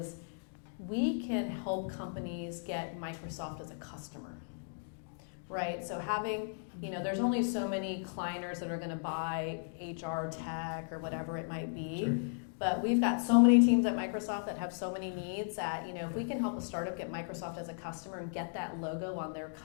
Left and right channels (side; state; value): right; silent; digital silence